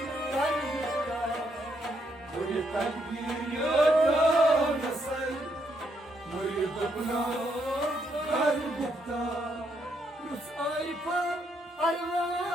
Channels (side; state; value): both; normal; correlation 0.75